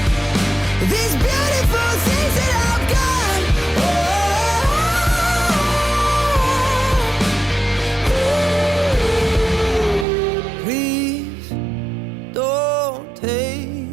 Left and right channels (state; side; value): drops out; left; at 10.1 s